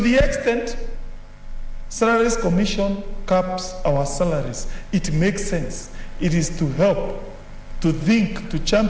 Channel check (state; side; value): identical; both; correlation 1.00